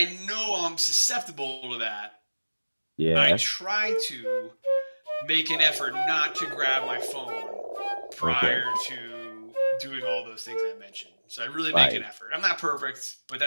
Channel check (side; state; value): both; inverted; correlation -1.00